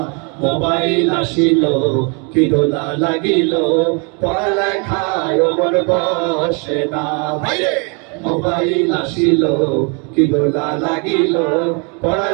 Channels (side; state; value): left; quieter; 34.7 dB